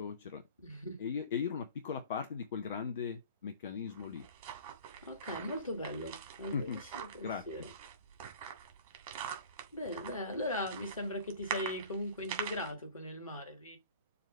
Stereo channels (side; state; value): both; inverted; correlation -0.42